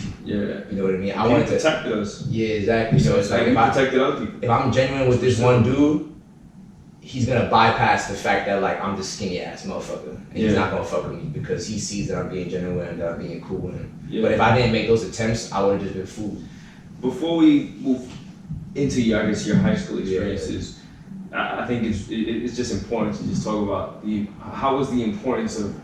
Yeah. You know what I mean? I wanted to protect us. Yeah, exactly. So it's like if I protected other people. If I'm genuine with this one dude, he's gonna bypass the fact that like I'm this skinny ass motherfucker, and he's not gonna fuck with me because he sees that I'm being genuine and that I'm being cool with him. Yeah. But if I didn't make those attempts, I would have just been fooled. Before we move into your high school experiences, I think it's just important to just talk about how was the importance of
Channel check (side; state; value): both; identical; correlation 1.00